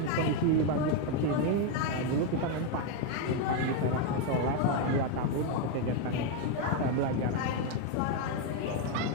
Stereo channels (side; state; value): both; different; correlation 0.02